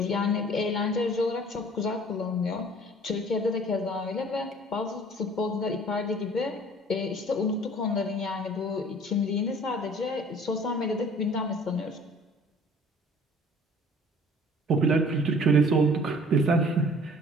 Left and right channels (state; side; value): normal; both; correlation 0.51